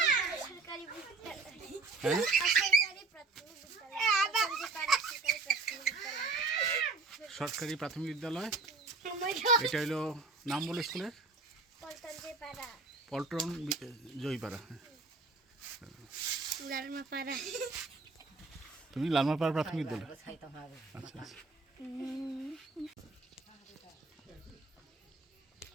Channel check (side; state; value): left; quieter; 3.7 dB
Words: সরকারি বিদ্যালয়। হ্যাঁ, সরকারি প্রাথমিক বিদ্যালয়। এটা হলো নাম বলো স্কুলের? পল্টন জয়পাড়া। লালমাপাড়া। তুমি লালমাপাড়া প্রাথমিক বিদ্যালয়? আচ্ছা আচ্ছা।